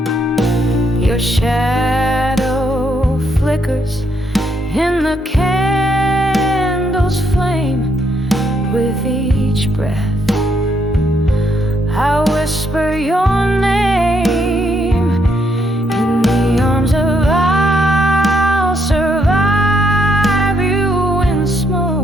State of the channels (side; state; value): both; normal; correlation 0.74